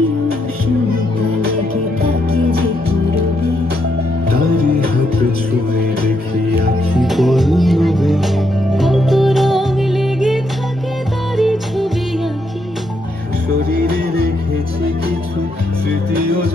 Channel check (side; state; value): both; normal; correlation 0.78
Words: উষ্ণতা লেগে থাকে যে গরমে তারি হাত ছুঁয়ে দেখি আখি পল্লবে কত রং লেগে থাকে তারি ছবি আঁকি শরীরে রেখেছি কিছু স্মৃতি